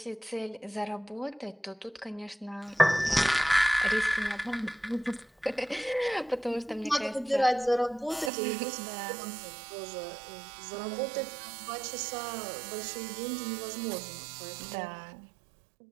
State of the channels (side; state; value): left; drops out; at 8.3 s